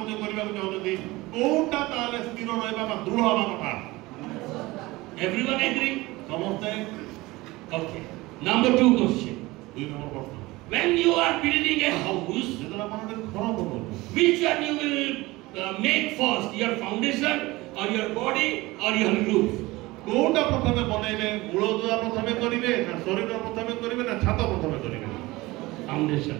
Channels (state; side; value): quieter; left; 20.6 dB